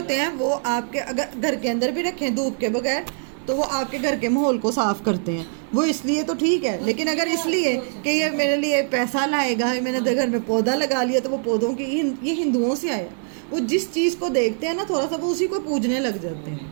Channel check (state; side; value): silent; left; 61 dB below the other